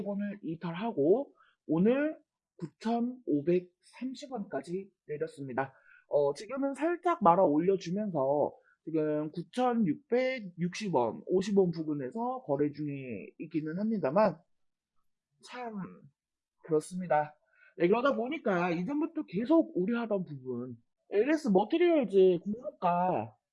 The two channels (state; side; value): identical; both; correlation 1.00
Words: 이탈하고 오늘 9,530원까지 내렸습니다. 지금은 살짝 말아 올려주면서 지금 9,660원, 50원 부근에서 거래 중에 있기는 합니다만 참 그렇습니다. 네, 그러다 보니까 이전부터 계속 우려하던 부분, LS 머티리얼즈 공모가